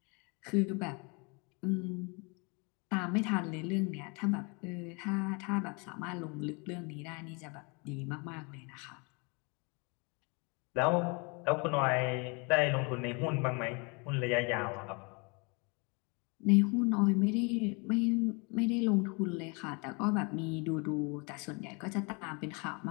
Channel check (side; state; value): right; quieter; 31.2 dB